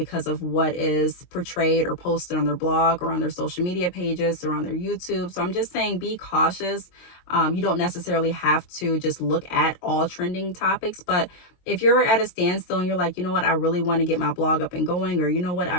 of what is portrayed or posted on their blog or on their social media pages or on their YouTube. So I'm just saying be cautious. You don't necessarily have to just look at all trending topics, but if you're at a standstill and you're like, you know what, I really want to get my blog up and going, or you know what, I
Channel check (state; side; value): late; right; 22 ms